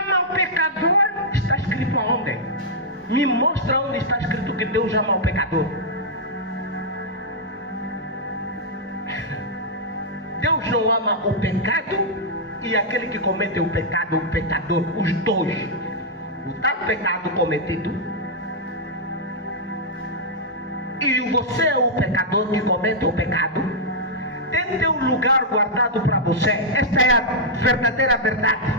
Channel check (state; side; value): normal; both; correlation -0.07